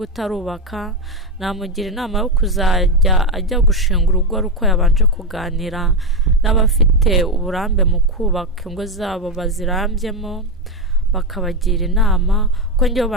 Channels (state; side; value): normal; both; correlation 0.11